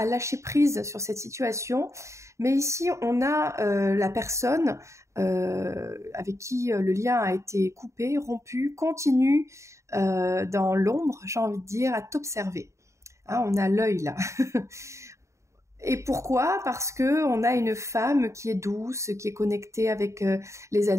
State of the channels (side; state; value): left; late; 0.14 ms